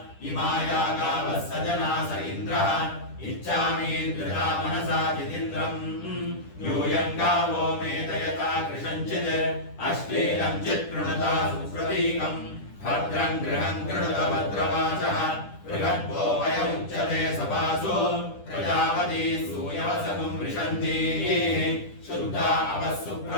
इमाया गावः सजना स इन्द्रः इच्छामीन्द्रिया मनसा जितीन्द्रम् यूयं गावो मे दयता कृशञ्चित् अश्लीलं चित्कृणुता सुप्रतीकम् भद्रं गृहं कृणुत भद्रवाचः बृहद्भो वय उच्यते सभासु प्रजापती सूयवसगुं वृषन्ति शुद्धा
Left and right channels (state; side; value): late; right; 10 ms